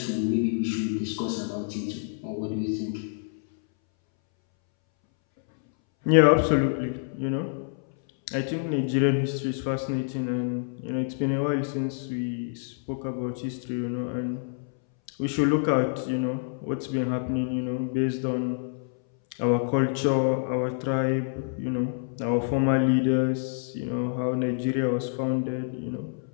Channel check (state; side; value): silent; right; 60 dB below the other